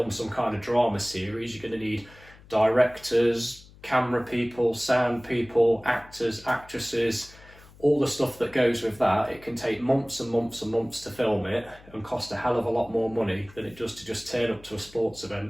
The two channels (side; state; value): left; noise; hum, 23 dB below the sound